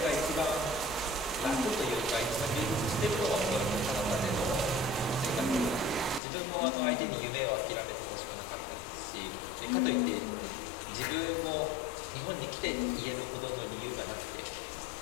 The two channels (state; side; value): drops out; right; at 6.2 s